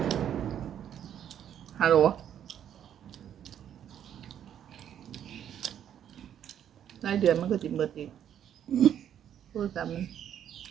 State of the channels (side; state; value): left; quieter; 9.8 dB